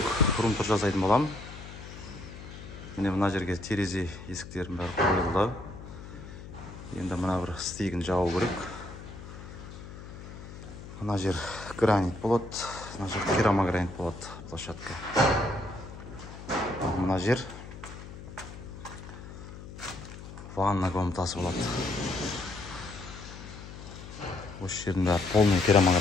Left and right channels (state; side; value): noise; left; hum, 13 dB below the sound